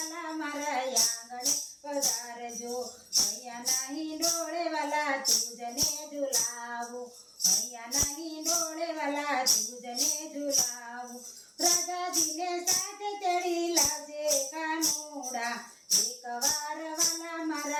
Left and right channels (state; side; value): identical; both; correlation 1.00